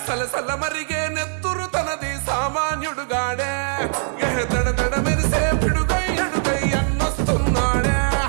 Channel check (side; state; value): left; silent; digital silence